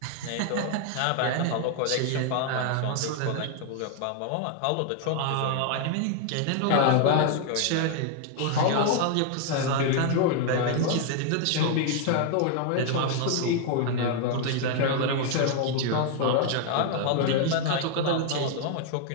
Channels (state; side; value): different; both; correlation 0.00